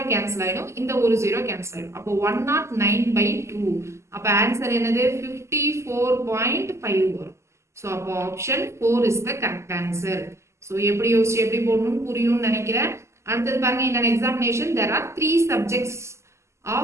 கேன்சல் ஆயிடும். இந்த ஒரு 0 கேன்சல் ஆயிடும். அப்போ 109/2. அப்போ ஆன்சர் என்னது? 54.5 வரும். ஸோ அப்போ option 4 is the correct answer. So எப்படி யோசிச்சு எப்படி போடணும்னு புரியும்னு நினைக்கிறேன். அடுத்தது பாருங்க, இந்த examination there are 3 subjects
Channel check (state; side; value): late; left; 0.13 ms